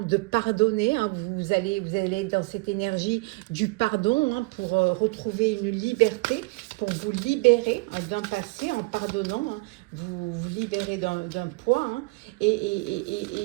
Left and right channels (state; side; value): quieter; left; 25.8 dB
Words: pardonner. Hein. Vous allez être dans cette énergie du pardon, hein, pour retrouver une liberté, pour vous libérer, hein, d'un passé en pardonnant. Hein. Vous libérer d'un poids. Hein.